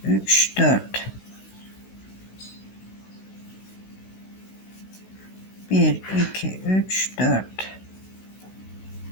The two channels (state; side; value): late; right; 16 ms